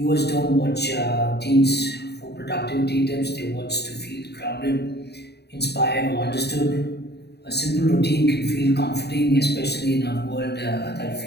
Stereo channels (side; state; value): right; late; 0.48 ms